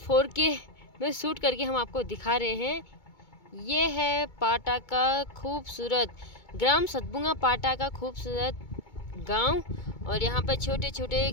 4K में शूट करके हम आपको दिखा रहे हैं। ये है पाटा का खूबसूरत ग्राम सतभुंगा पाटा का खूबसूरत गांव। और यहाँ पर छोटे छोटे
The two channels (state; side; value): late; right; 2.2 ms